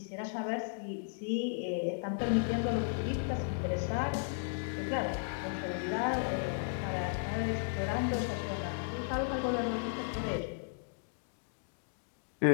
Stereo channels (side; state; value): right; silent; digital silence